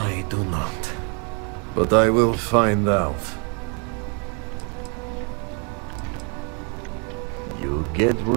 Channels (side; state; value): left; quieter; 37.0 dB